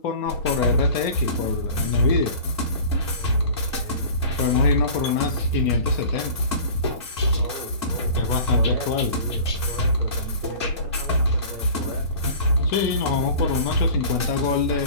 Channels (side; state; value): left; late; 2.2 ms